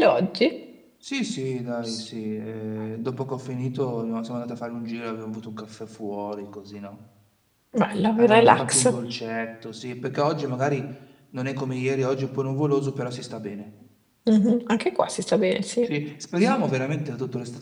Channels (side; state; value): both; identical; correlation 1.00